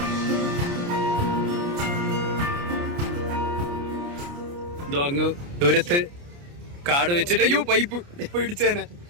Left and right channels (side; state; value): left; late; 29 ms